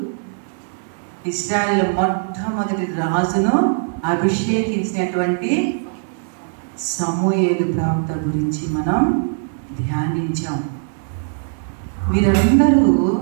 ఇశ్రాయేలు మొట్టమొదటి రాజును అభిషేకించినటువంటి సమూయేలు ప్రవక్త గురించి మనం ధ్యానించాం. వీరందరూ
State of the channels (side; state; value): left; silent; digital silence